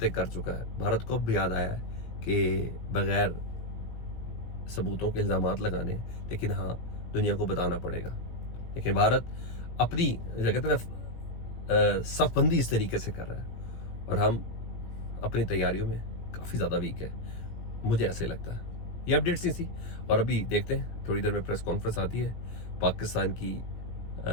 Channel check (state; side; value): late; right; 17 ms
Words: कर चुका है। भारत को अब याद आया है कि बगैर सबूतों के इल्जामात लगाने, लेकिन हाँ दुनिया को बताना पड़ेगा। लेकिन भारत अपनी कहते हैं ना सफबंदी इस तरीके से कर रहा है, और हम अपनी तैयारियों में काफ़ी ज़्यादा वीक है, मुझे ऐसे लगता है। ये अपडेट्स ही थी, और अभी देखते हैं थोड़ी देर में प्रेस कॉन्फ्रेंस आती है पाकिस्तान की